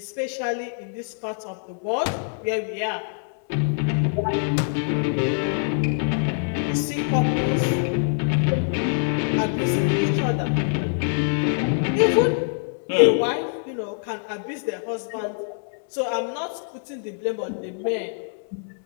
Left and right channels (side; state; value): right; silent; 62 dB below the other